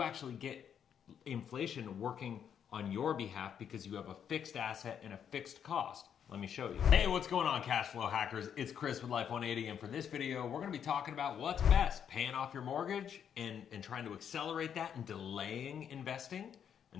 actually get inflation working on your behalf because you have a fixed asset and a fixed cost. Let me show you. Hey, what's going on, cash flow hackers? It's Chris with Life 180, and for this video, we're gonna be talking about what's best, paying off your mortgage and trying to accelerate that and delaying investing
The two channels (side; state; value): right; quieter; 8.4 dB